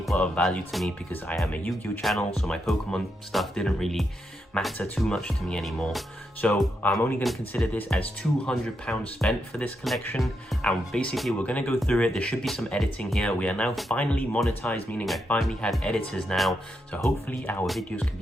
were of value to me because I am a Yu-Gi-Oh channel, so my Pokemon stuff didn't really matter too much to me anymore. So I'm only going to consider this as £200 spent for this collection, and basically we're going to go through it. There should be some editing here. We are now finally monetized, meaning I finally have editors now, so hopefully our videos can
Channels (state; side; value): normal; both; correlation 0.82